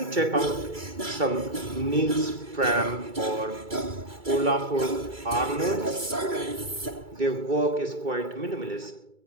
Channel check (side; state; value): left; late; 2.3 ms